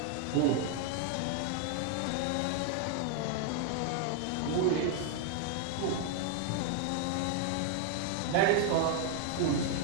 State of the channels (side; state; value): both; different; correlation 0.00